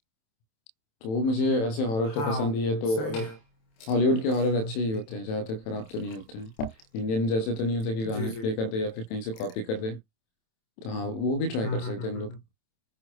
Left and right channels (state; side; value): late; right; 27 ms